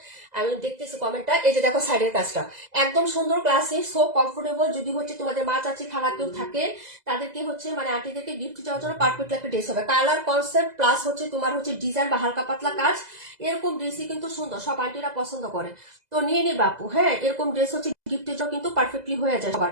আমি দেখতেছি কমেন্টটা। এই যে দেখো সাইডের কাজটা একদম সুন্দর, ক্লাসি, সো কমফোর্টেবল। যদি হচ্ছে তোমাদের মা চাচি খালা কেউ থাকে, তাদেরকে হচ্ছে মানে আন্টিদেরকে গিফট দেওয়ার জন্য পারফেক্ট একটা ড্রেস হবে। কালার কনসেপ্ট প্লাস হচ্ছে তোমার হচ্ছে ডিজাইন বা হালকা পাতলা কাজ, এরকম ড্রেসই কিন্তু সুন্দর, সব আন্টিরা পছন্দ করে। তো নিয়ে নিবা আপু। হ্যাঁ, এরকম ড্রেস হচ্ছে গিফটের জন্য কিন্তু পারফেক্টলি হয়ে যায়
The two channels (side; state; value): left; late; 2.0 ms